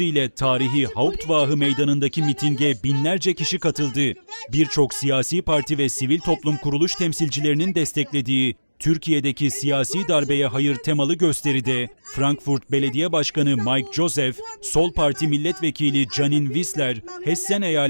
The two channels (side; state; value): both; inverted; correlation -1.00